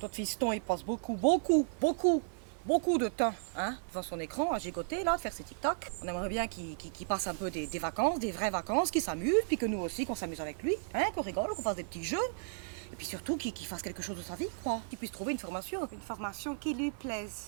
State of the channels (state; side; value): silent; left; 55 dB below the other